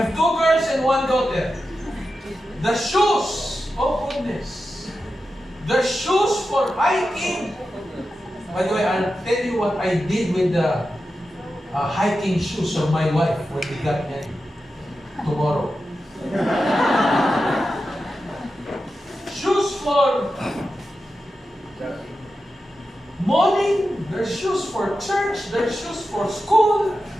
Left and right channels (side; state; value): both; normal; correlation 0.91